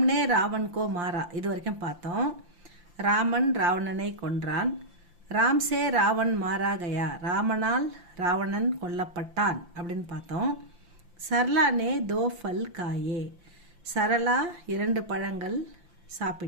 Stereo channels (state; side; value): late; left; 5.8 ms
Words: ராவன்கோ மாறா இது வரைக்கும் பார்த்தோம். ராமன் ராவணனை கொன்றான். ராம் சே ராவன் மாரா கயா, ராமனால் ராவணன் கொல்லப்பட்டான் அப்படின்னு பார்த்தோம். சரளா நே தோ ஃபல் காயே, சரளா 2 பழங்கள்